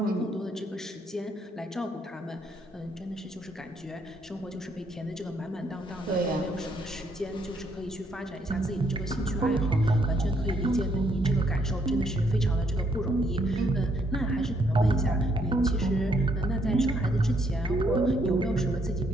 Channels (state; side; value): normal; both; correlation 0.72